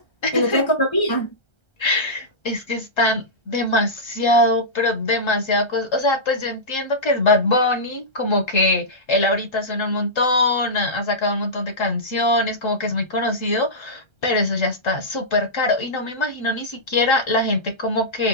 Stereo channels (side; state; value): right; late; 1.3 ms